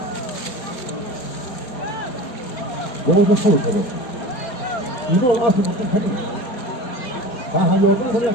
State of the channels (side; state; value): right; late; 4.2 ms